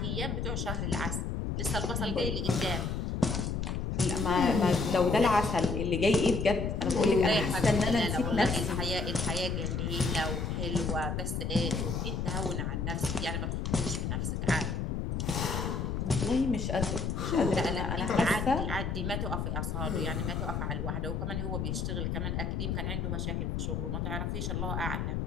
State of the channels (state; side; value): noise; left; rumble, 1 dB below the sound